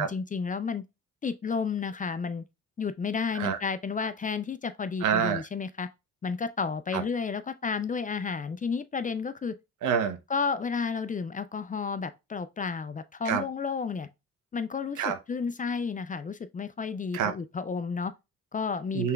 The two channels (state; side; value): normal; both; correlation 0.23